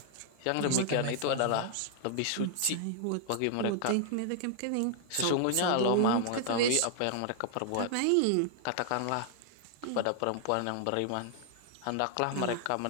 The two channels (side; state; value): both; different; correlation 0.00